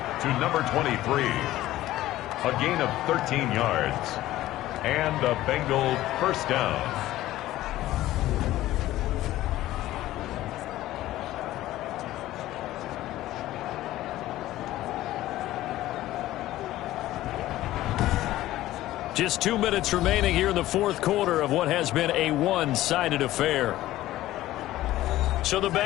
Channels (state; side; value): quieter; right; 15.3 dB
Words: to number 23. A gain of 13 yards. And a Bengal first down. Just 2 minutes remaining here in the 4th quarter of what has been a one-sided affair. So the